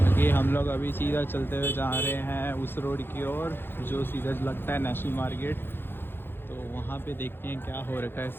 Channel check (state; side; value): late; right; 0.10 ms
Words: हम लोग अभी सीधा चलते हुए जा रहे हैं उस रोड की ओर जो सीधा लगता है नेशनल मार्केट. तो वहाँ पे देखते हैं क्या हो रखा है